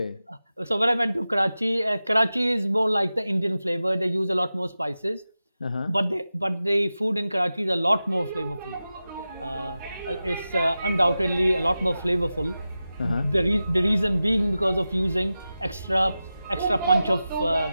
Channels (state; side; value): inverted; both; correlation -0.93